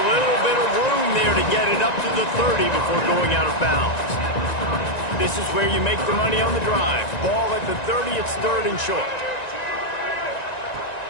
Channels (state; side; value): late; right; 1.9 ms